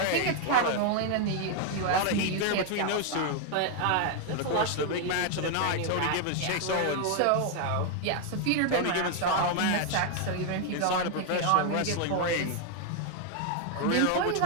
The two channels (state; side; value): different; both; correlation 0.01